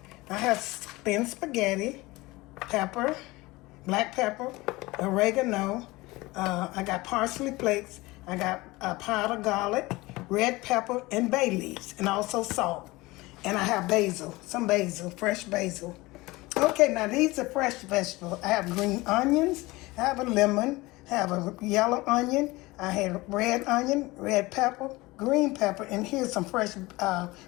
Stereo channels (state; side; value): quieter; right; 21.2 dB